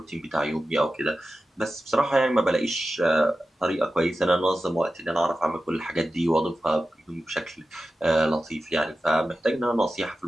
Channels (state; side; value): normal; both; correlation 0.93